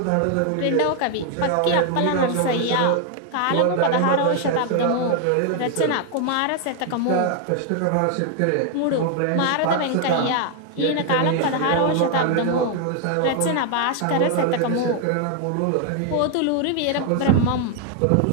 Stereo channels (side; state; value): both; different; correlation 0.01